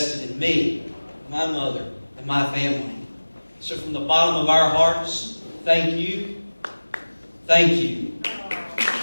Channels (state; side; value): inverted; both; correlation -1.00